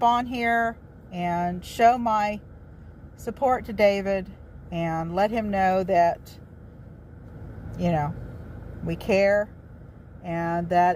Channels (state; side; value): identical; both; correlation 1.00